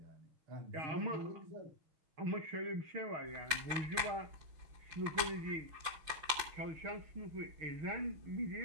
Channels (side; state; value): left; late; 6.3 ms